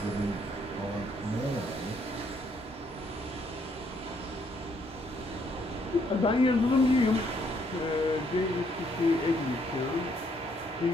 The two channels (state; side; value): normal; both; correlation 0.70